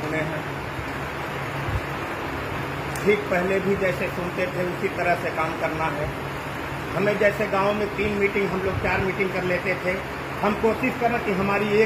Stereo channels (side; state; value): both; identical; correlation 1.00